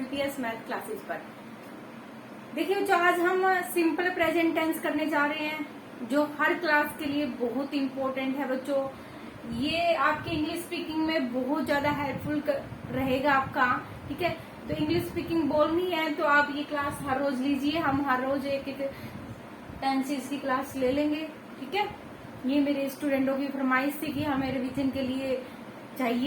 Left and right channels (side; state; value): both; identical; correlation 1.00